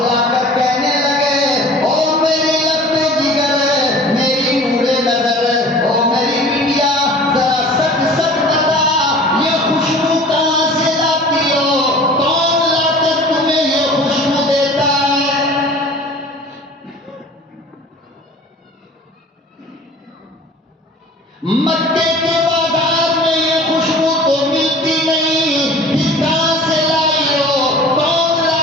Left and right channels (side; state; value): both; normal; correlation 0.44